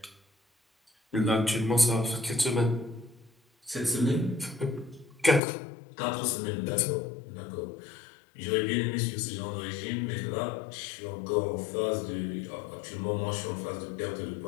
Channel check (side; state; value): right; drops out; at 5.4 s